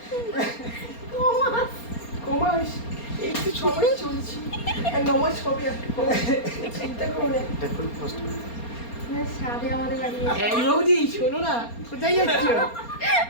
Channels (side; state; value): right; late; 4.3 ms